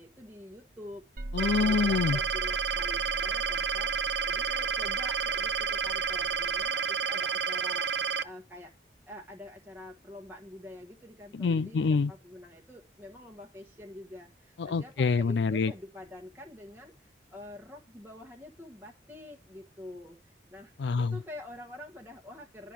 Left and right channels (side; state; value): both; normal; correlation 0.37